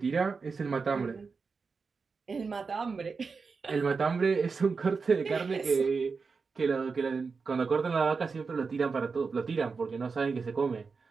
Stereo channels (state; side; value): quieter; left; 4.9 dB